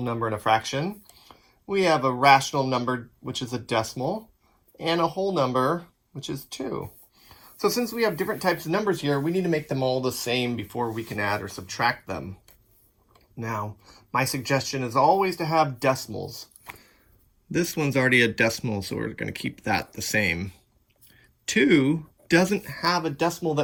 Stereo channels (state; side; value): identical; both; correlation 1.00